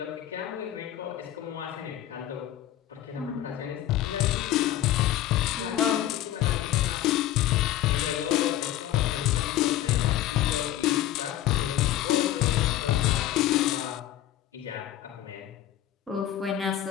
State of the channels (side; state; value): right; quieter; 13.1 dB